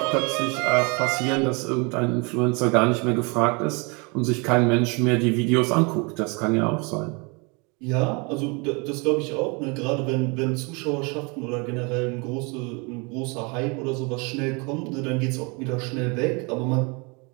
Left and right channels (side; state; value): left; quieter; 30.5 dB